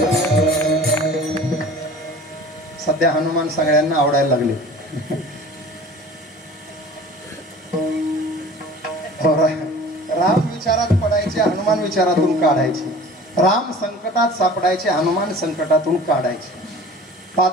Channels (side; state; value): both; normal; correlation 0.43